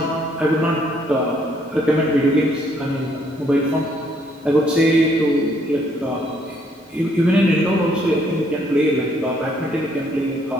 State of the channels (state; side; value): normal; both; correlation 0.68